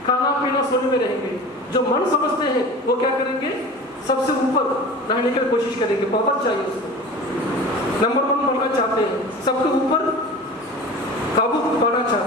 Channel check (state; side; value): normal; both; correlation 0.37